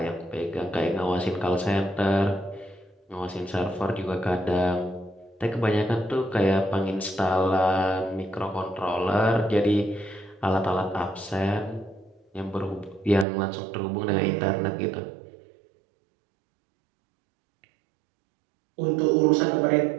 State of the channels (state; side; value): drops out; left; at 13.2 s